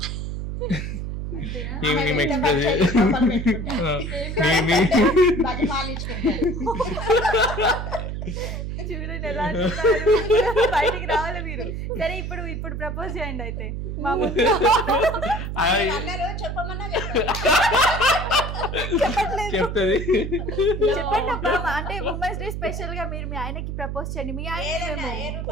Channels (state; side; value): noise; right; hum, 5 dB below the sound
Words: చూడండి ఎలా బయటికి రావాలి మీరు. సరే ఇప్పుడు ప్రపోజ్ చేయండి అయితే మా ముందు. చెప్తుంది చెప్పండి అబ్బా, అంటే ఉమెన్స్ డే స్పెషల్ గా మీరు మీ ఆయనకి ప్రపోజ్ చేయండి. మీ ఆయన